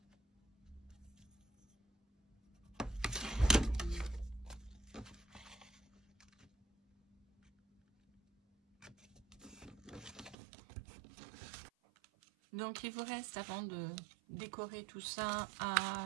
Donc il vous reste, avant de décorer tout ça,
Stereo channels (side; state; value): left; drops out; at 10.4 s